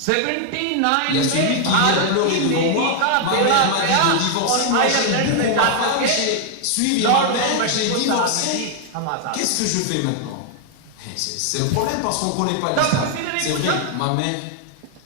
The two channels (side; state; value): both; different; correlation 0.00